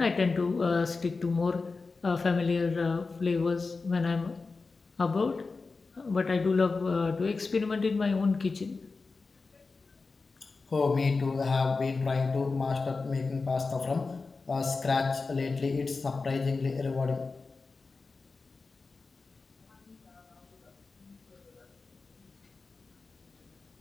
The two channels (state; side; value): quieter; right; 4.1 dB